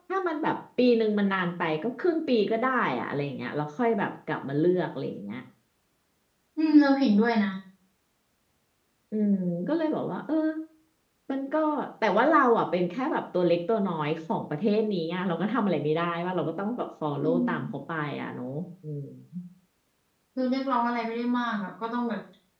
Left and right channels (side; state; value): both; identical; correlation 1.00